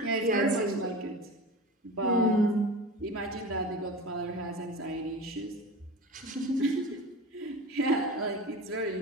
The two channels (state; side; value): normal; both; correlation 0.31